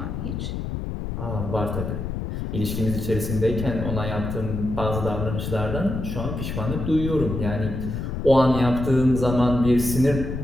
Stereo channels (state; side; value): noise; left; rumble, 4 dB below the sound